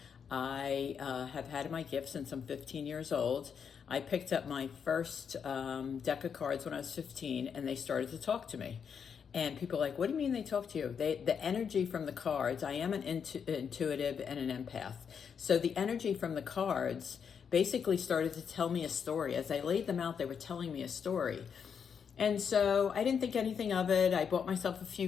I have had my gift since I'm 15 years old. I picked up my first deck of cards when I was 15 and they started to talk to me. And people are like, what do you mean they talk to you? The energy from the cards, I am an intuitive and an empath. So the energy from the cards basically started to tell me a story. As I laid them out, they were telling me a story. And so I didn't think anything of it. I bought myself a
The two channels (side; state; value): right; quieter; 7.0 dB